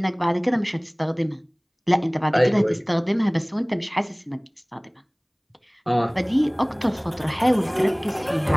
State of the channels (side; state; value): both; identical; correlation 1.00